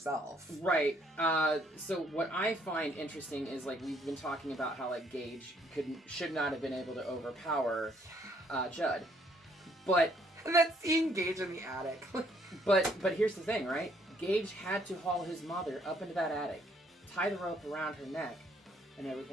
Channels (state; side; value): normal; both; correlation 0.66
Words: Right. So what I find interesting is, like, we've been talking about how, like, Gage should not have been able to overpower Judd. But... And then seeing Gage in the attic. but here's the thing, right? Gage had to haul his mother up into that attic, tie the rope around her neck and